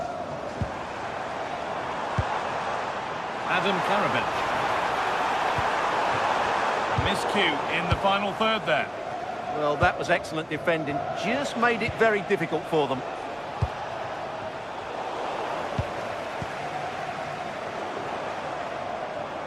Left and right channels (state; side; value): identical; both; correlation 1.00